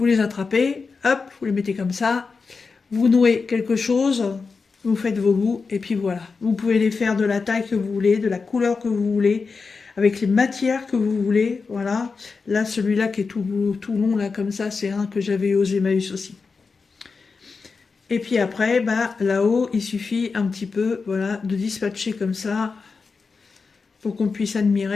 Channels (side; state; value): right; quieter; 4.7 dB